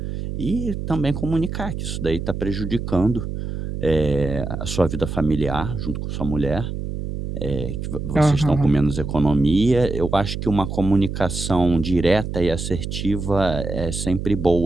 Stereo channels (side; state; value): right; noise; hum, 5 dB below the sound